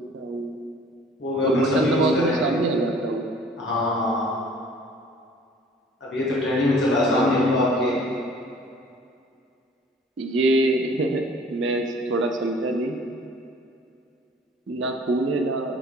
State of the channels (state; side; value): normal; both; correlation 0.52